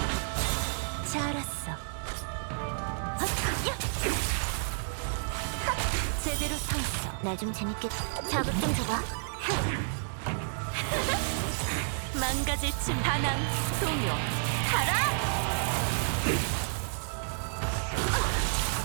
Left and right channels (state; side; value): silent; left; digital silence